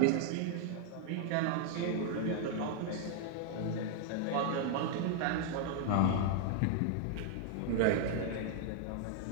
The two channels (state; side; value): different; both; correlation 0.00